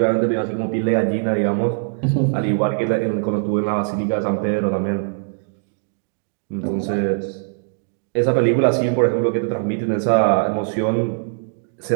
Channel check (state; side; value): silent; left; digital silence